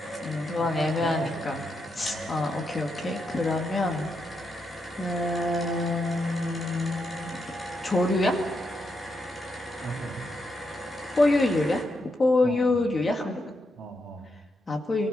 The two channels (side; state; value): both; normal; correlation 0.82